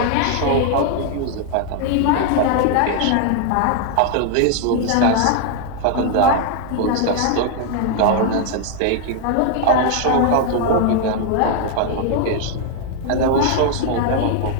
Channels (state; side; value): different; both; correlation 0.00